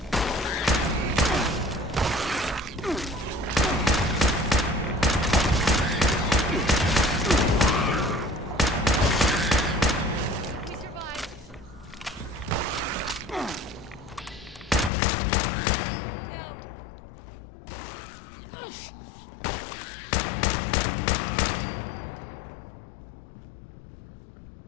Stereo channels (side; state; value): right; drops out; at 14.9 s